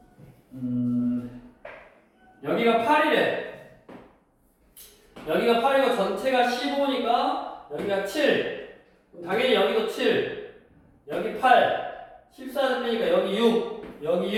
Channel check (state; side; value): identical; both; correlation 1.00